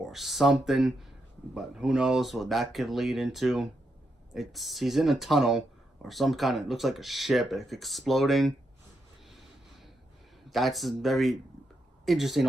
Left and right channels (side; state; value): both; normal; correlation 0.82